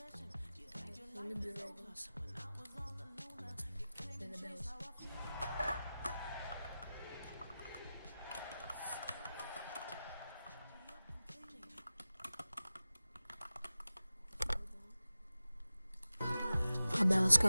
Let me do the Ravens. Then the Bills. I bet, let's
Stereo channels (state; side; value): inverted; both; correlation -0.95